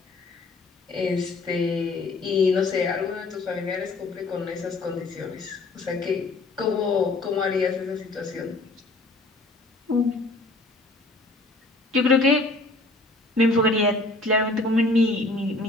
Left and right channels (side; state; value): right; quieter; 3.1 dB